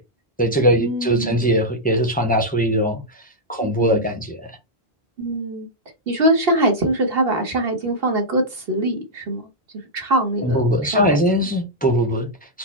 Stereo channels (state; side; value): normal; both; correlation -0.06